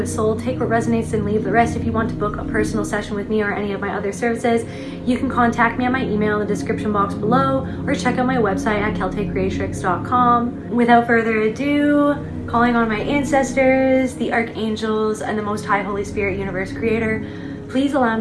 soul. Take what resonates and leave the rest. If you want to book a personal session with me or any of my other services, you can contact me at my email in the description box below or check out my website at celtaecreatrix.com. Without further ado, calling on my ancestors, the archangels, and the Most High Holy Spirit Universe Creator, please allow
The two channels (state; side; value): identical; both; correlation 1.00